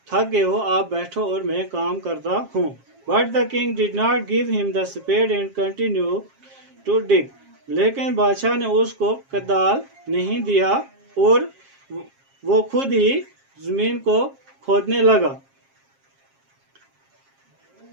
تھک گئے ہو، آپ بیٹھو اور میں کام کرتا ہوں. But the king did not give him the spade and continued to dig. لیکن بادشاہ نے اس کو کدال نہیں دیا اور وہ خود ہی زمین کو کھودنے لگا.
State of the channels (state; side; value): late; left; 7.4 ms